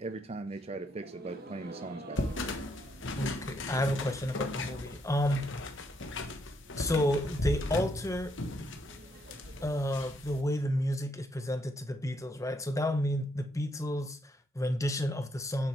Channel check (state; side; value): normal; both; correlation 0.75